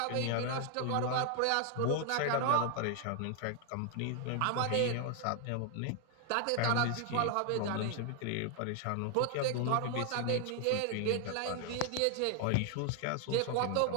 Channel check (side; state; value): both; different; correlation 0.00